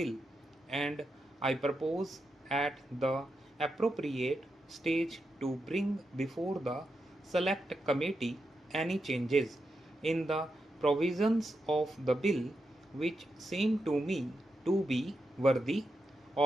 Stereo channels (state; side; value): normal; both; correlation 0.86